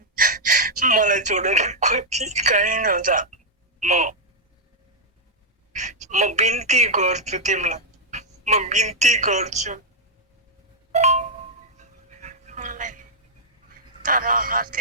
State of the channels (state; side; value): normal; both; correlation -0.04